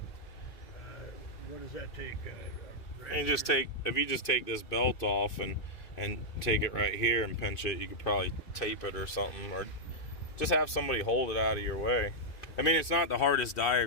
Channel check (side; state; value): right; late; 2.6 ms